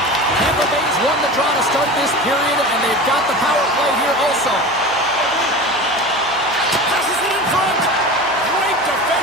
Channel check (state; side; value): noise; right; hum, 21 dB below the sound